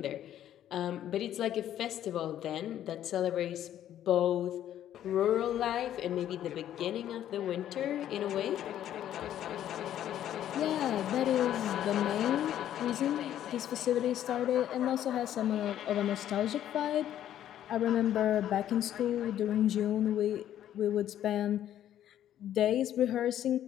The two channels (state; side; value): quieter; right; 11.3 dB